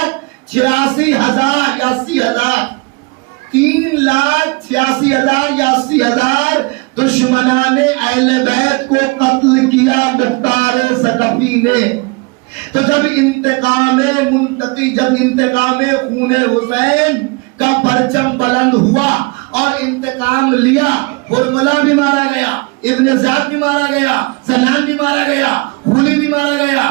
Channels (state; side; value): quieter; left; 27.8 dB